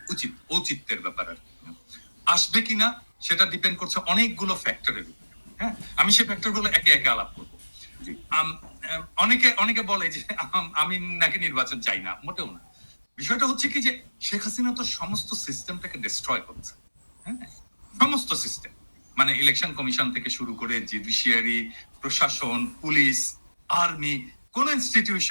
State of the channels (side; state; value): both; inverted; correlation -1.00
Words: উচিত, ঔচিত্যের ব্যাপার আর আসবে কিনা সেটা ডিপেন্ড করছে অনেকগুলো ফ্যাক্টরের উপর। হ্যাঁ, আমি সেই ফ্যাক্টরগুলো একে একে আলাপ করবো। অনেকে অনেকে বলে যে আমি নাকি নির্বাচন চাই না, মোটেও না। বিষয়টা হচ্ছে কি যে শেখ হাসিনা তো সমস্ত সিস্টেমটাকে ডিস্ট্রয় করছে। হ্যাঁ, সমস্ত সিস্টেম, মানে ইলেকশন কমিশন থেকে শুরু করে জুডিশিয়ারি, প্রশাসন, পুলিশ, আর্মি, কোন